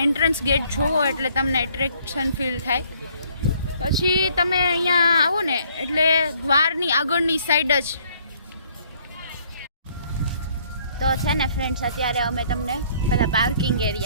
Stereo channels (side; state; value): both; inverted; correlation -0.63